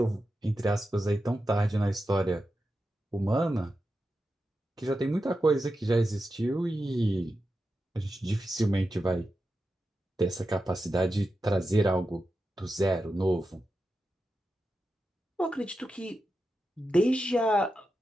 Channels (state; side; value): normal; both; correlation 0.90